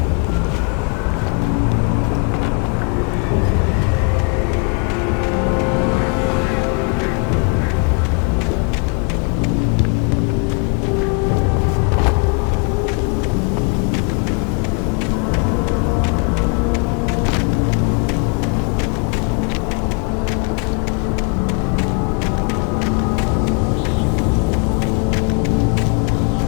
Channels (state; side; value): quieter; right; 36.0 dB